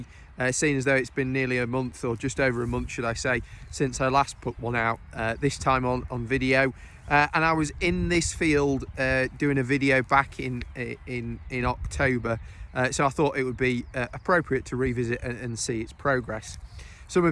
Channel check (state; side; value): identical; both; correlation 1.00